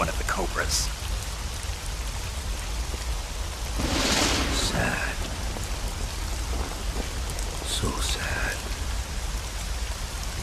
of the Cobras? Sad. So sad.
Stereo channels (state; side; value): identical; both; correlation 1.00